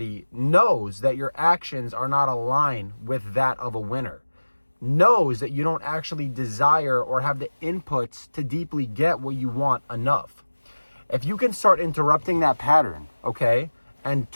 knows that your actions are not aligned with that of a winner. Knows that you don't actually desire or have the inputs to deeply get what you want enough. If you can start interrupting that pattern, okay, and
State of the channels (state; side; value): inverted; both; correlation -1.00